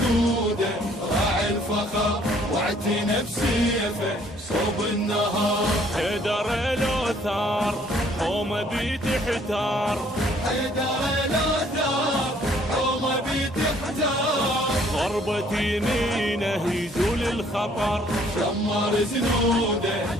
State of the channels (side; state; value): both; normal; correlation 0.61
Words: راعي الفخر، واعتنى بسيفه صوب النهار. حيدر الأوتار حومه بتحتار، حيدر الأوتار حومه بتحتار. ضربة يمينه يزول الخطر، شمر زنوده